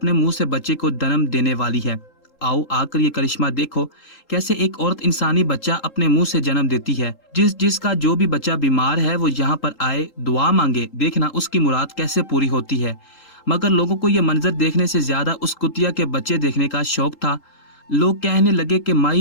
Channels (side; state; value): right; late; 3.8 ms